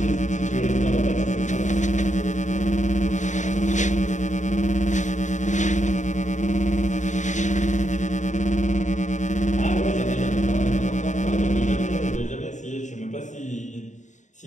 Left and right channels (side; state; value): right; late; 0.35 ms